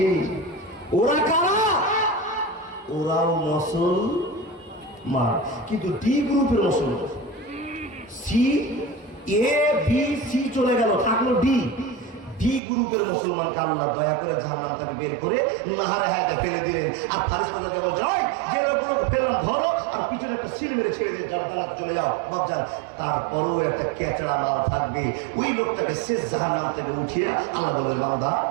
ওরা কারা? ওরাও মুসলমান, কিন্তু ডি গ্রুপের মুসলমান। সি, এ, বি, সি চলে গেল, থাকলো ডি। ডি গ্রুপের মুসলমানকে আল্লাহ দয়া করে জাহান্নাম থেকে বের করে নাহারে হায়াতে ফেলে দিলেন। আর ফারিস্তাদেরকে বলছে, ওই যে লোকগুলোকে ফেললাম ধরো, আর পিছনে একটা সিল মেরে ছেড়ে দিয়ে জান্নাতে চলে যাও। বাপজান, তারপরেও একটা কেচড়া মাল থাকবে, ওই লোকটাকে শেষ জাহান্নাম থেকে উঠিয়ে আল্লাহ বলবে, বান্দা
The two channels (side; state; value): left; drops out; at 12.6 s